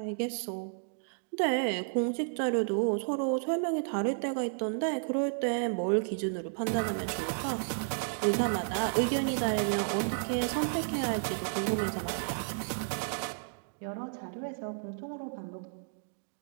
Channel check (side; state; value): left; silent; digital silence